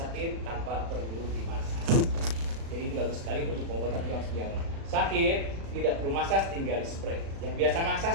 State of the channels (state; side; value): late; left; 36 ms